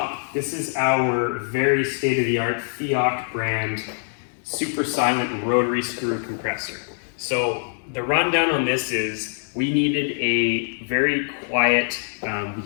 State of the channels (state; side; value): silent; right; digital silence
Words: This is our very state-of-the-art FIOC brand super silent rotary screw compressor. So the rundown on this is we needed a very quiet